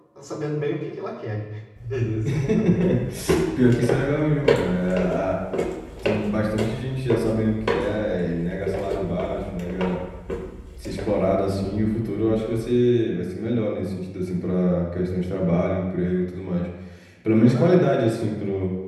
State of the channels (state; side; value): identical; both; correlation 1.00